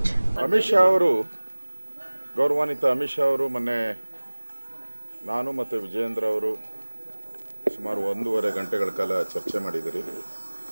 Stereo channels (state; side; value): inverted; both; correlation -1.00